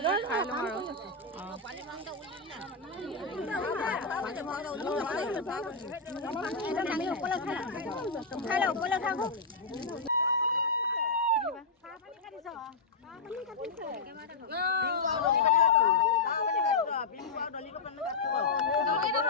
খাই লওঁ আৰু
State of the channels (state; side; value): quieter; right; 3.9 dB